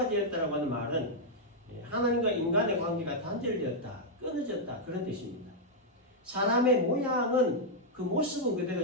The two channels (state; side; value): normal; both; correlation -0.04